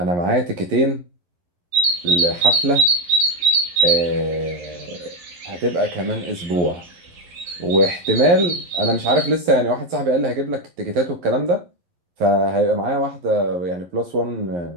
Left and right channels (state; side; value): late; left; 11 ms